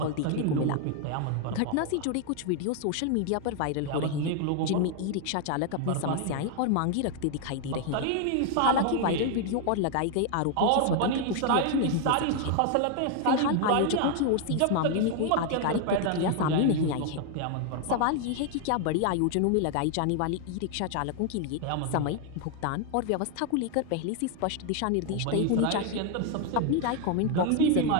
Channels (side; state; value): both; different; correlation 0.00